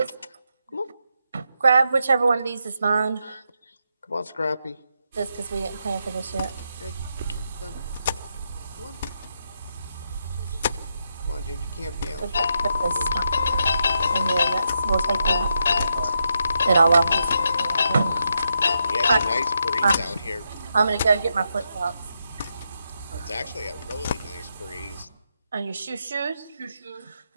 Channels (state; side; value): inverted; both; correlation -0.82